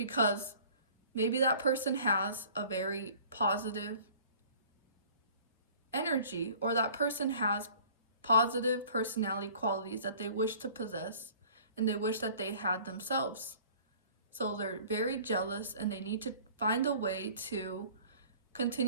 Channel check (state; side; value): inverted; both; correlation -0.50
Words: maybe that person has a very positive energy, or that person has positive personality qualities that they wish to possess and they wish that they had themselves. So they're very jealous and they need to find a way to